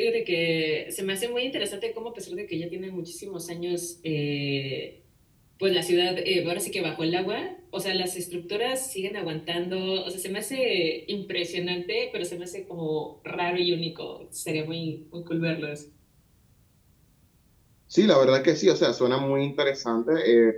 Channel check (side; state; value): both; identical; correlation 1.00